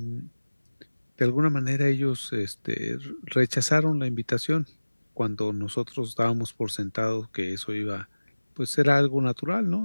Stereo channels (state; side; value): inverted; both; correlation -1.00